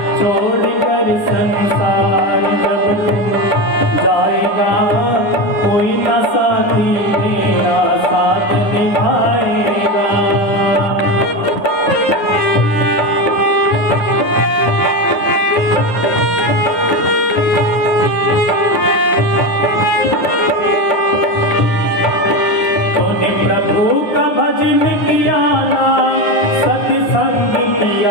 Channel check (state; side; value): late; right; 9.7 ms